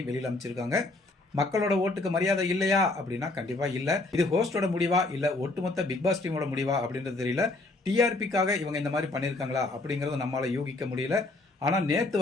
வெளியில அமைச்சிருக்காங்க. மக்களோட ஓட்டுக்கு மரியாதை இல்லையா அப்படின்னா கண்டிப்பா இல்ல. இது ஹோஸ்டோட முடிவா இல்ல ஒட்டுமொத்த பிக் பாஸ் டீமோட முடிவா அப்படின்றது தெரியல. டிஆர்பிக்காக இவங்க இந்த மாதிரி பண்ணிருக்காங்களா அப்படிங்கறத நம்மளால யூகிக்க முடியல. ஆனா நேத்து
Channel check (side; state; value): right; quieter; 3.0 dB